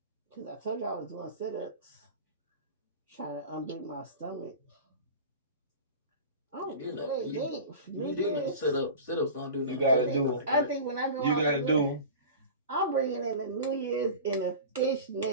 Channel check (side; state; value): both; inverted; correlation -0.34